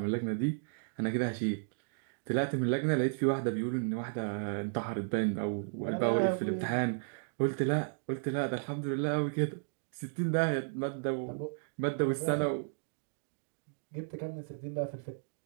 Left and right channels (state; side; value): silent; left; digital silence